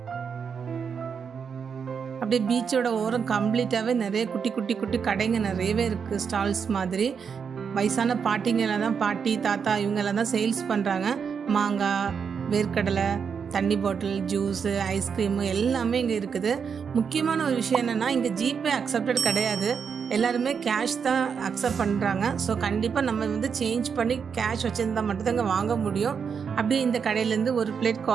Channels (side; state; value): left; quieter; 6.5 dB